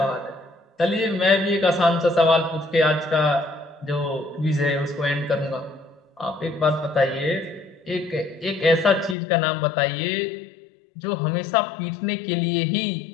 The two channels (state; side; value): drops out; right; at 9.2 s